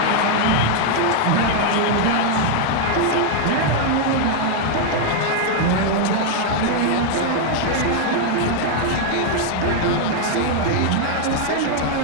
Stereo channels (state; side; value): different; both; correlation 0.00